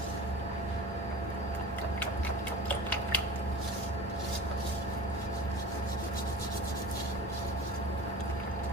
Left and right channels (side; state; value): both; normal; correlation 0.36